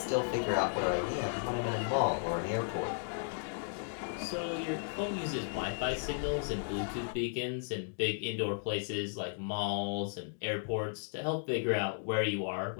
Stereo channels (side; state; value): right; silent; digital silence